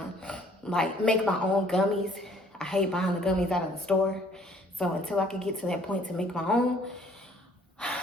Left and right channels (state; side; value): normal; both; correlation 0.59